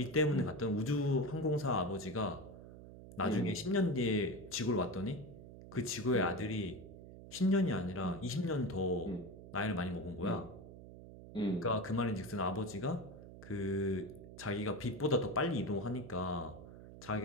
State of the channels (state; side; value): noise; right; hum, 15 dB below the sound